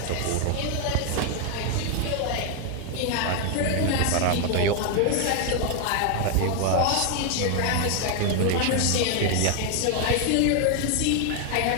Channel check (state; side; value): different; both; correlation 0.00